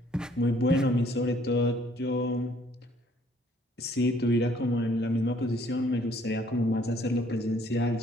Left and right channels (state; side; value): normal; both; correlation 0.62